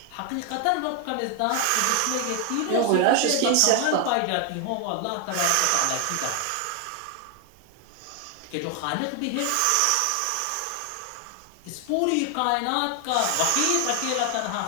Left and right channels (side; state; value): both; different; correlation 0.00